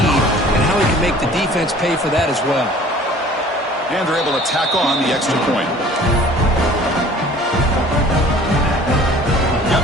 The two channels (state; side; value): normal; both; correlation 0.49